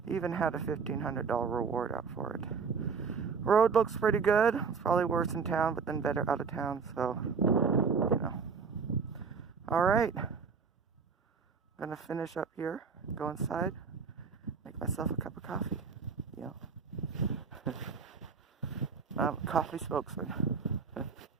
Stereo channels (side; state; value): left; quieter; 5.5 dB